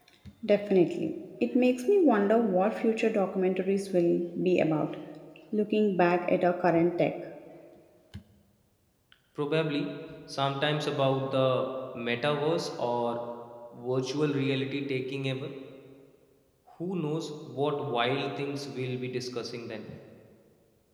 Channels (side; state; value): both; identical; correlation 1.00